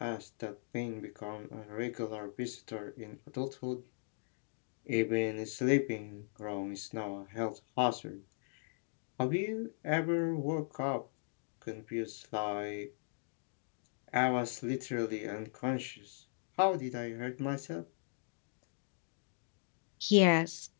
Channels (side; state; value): right; silent; digital silence